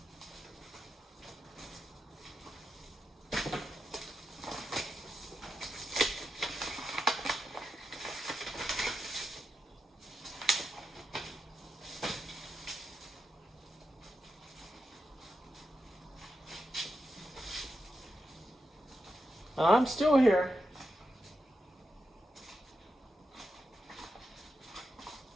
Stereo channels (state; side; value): normal; both; correlation 0.87